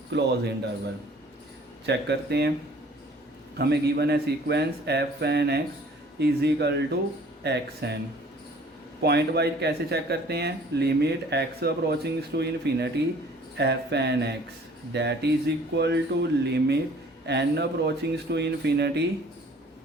close interval. Check करते हैं, हमें given है sequence f n x is equal to x n. Pointwise कैसे check करते हैं, limit x approaching to infinity f n x that is equal to limit n approaching to infinity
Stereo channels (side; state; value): both; normal; correlation 0.53